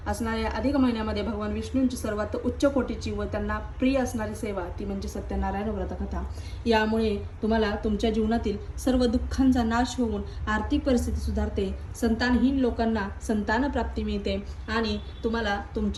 असणाऱ्या अधिक महिन्यामध्ये भगवान विष्णूंची सर्वात उच्च कोटीची व त्यांना प्रिय असणारी सेवा ती म्हणजे सत्यनारायण व्रतकथा. यामुळे तुम्हाला तुमच्या जीवनातील सर्व दुःखांचा नाश होऊन आर्थिक परिस्थिती सुधारते, संतानहीन लोकांना संतान प्राप्ती मिळते आणि तुम्हाला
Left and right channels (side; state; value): both; identical; correlation 1.00